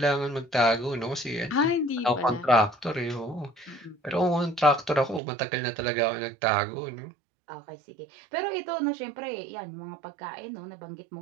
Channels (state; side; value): drops out; left; at 5.2 s